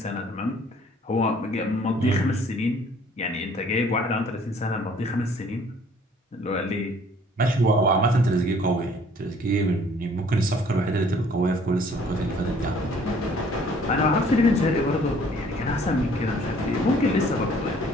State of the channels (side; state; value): both; normal; correlation 0.57